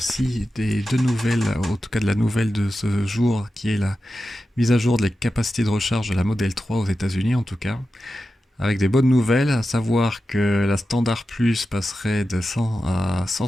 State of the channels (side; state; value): both; normal; correlation 0.92